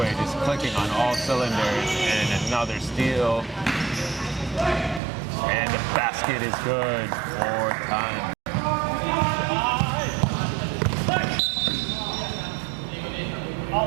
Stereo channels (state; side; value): drops out; left; at 5.0 s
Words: just clicking on all cylinders, and another steal. And the basket is good. 4 times.